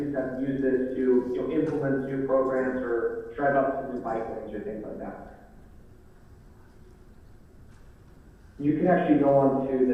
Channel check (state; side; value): identical; both; correlation 1.00